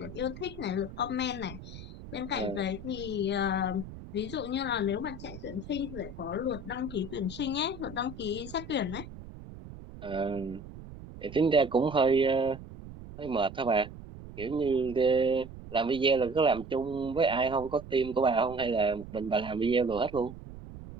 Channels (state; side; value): noise; right; rumble, 14 dB below the sound